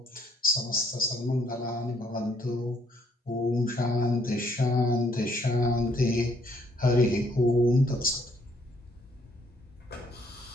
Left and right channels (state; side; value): normal; both; correlation 0.68